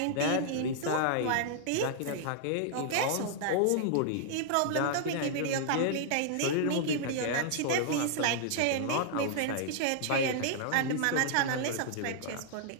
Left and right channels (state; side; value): different; both; correlation -0.01